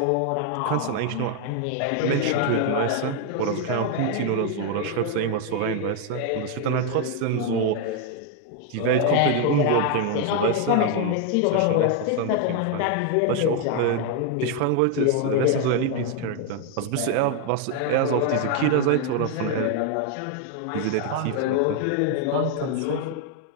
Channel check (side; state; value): both; different; correlation 0.01